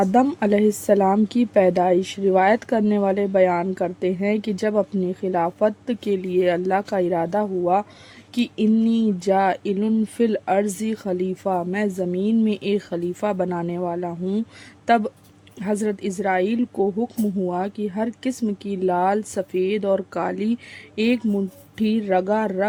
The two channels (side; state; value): both; identical; correlation 1.00